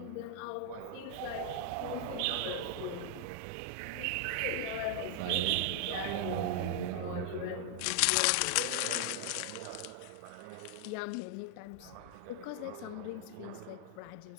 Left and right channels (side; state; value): both; different; correlation 0.00